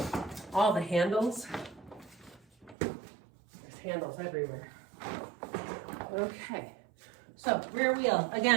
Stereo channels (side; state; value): left; drops out; at 2.8 s